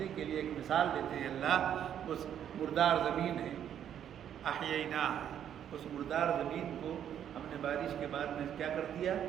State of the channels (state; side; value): quieter; left; 9.7 dB